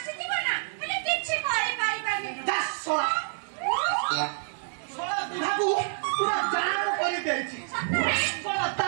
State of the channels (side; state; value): left; silent; digital silence